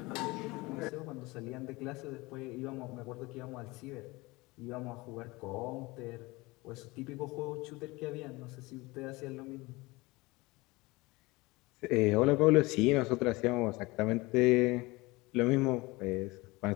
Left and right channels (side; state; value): right; quieter; 22.8 dB